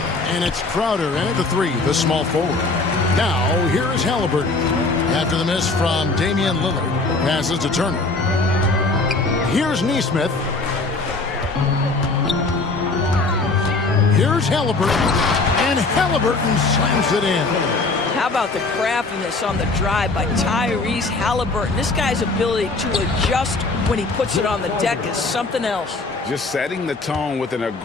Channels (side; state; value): right; quieter; 3.5 dB